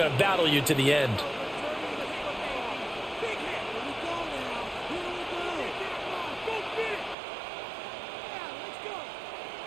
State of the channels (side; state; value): left; drops out; at 7.2 s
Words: to battle you to the end.